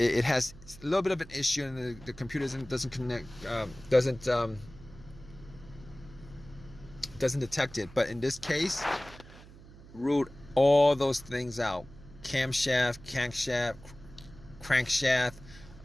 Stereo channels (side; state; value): right; noise; hum, 19 dB below the sound